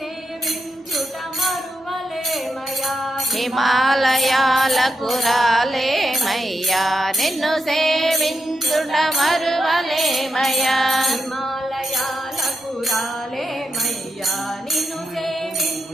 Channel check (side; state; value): both; normal; correlation 0.86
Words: మరువలేమయ్యా హిమాలయాలకు రాలేమయ్యా నిన్ను సేవించుట మరువలేమయ్యా హిమాలయాలకు రాలేమయ్యా నిన్ను